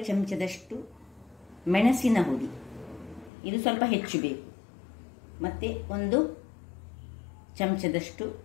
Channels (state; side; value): drops out; right; at 3.3 s